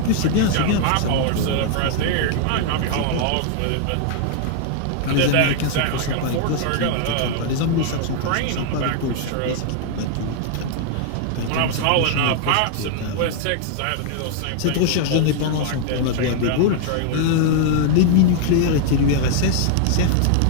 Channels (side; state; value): both; different; correlation 0.00